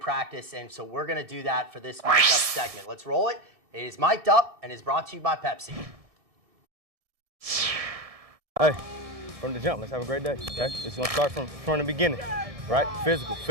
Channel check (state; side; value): late; left; 1.7 ms